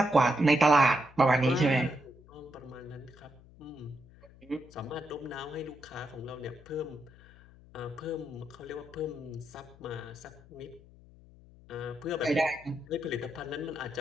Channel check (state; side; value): noise; left; hum, 23 dB below the sound